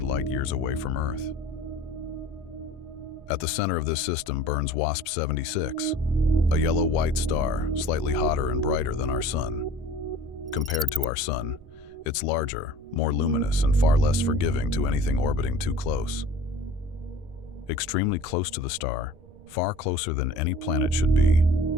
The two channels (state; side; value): noise; right; rumble, 22 dB below the sound